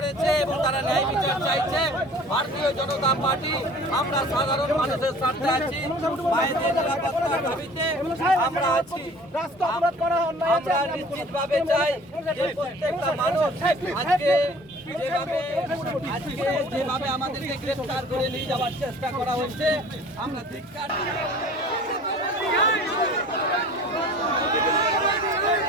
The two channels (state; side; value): normal; both; correlation 0.47